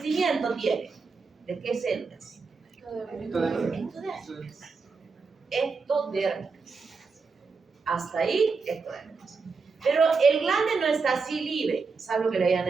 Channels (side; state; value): left; quieter; 4.7 dB